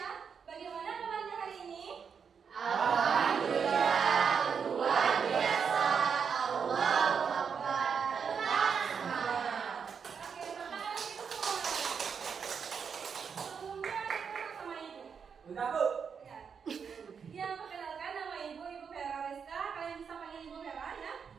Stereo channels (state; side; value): quieter; left; 6.5 dB